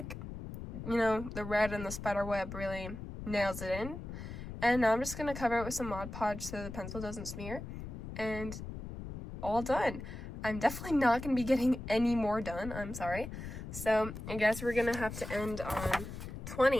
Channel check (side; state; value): left; noise; rumble, 9 dB below the sound